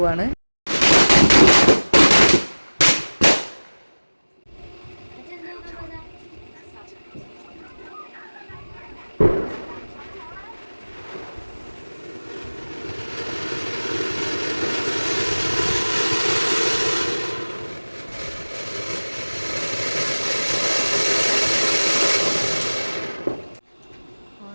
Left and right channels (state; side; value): inverted; both; correlation -1.00